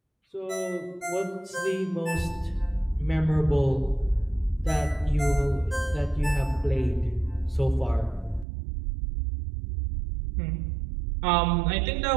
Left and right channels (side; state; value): left; drops out; at 8.5 s